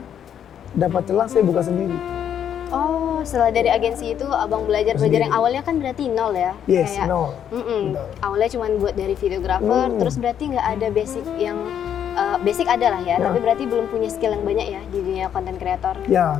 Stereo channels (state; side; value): quieter; right; 9.2 dB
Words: dapat celah saya buka sendiri. Oh, setelah dari agensi itu Abang belajar yang awalnya kan berarti nol ya? Yes, kayak, nol. Awalnya cuma buat dari videographer, terus berarti nggak ada basic yang, basic ada lah ya, tapi berarti belum punya skill yang banyak ya di dunia konten kreator.